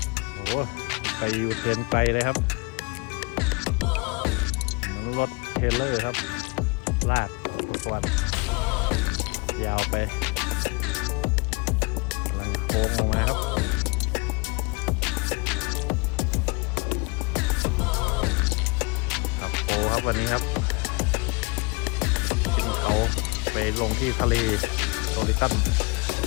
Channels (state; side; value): quieter; right; 29.0 dB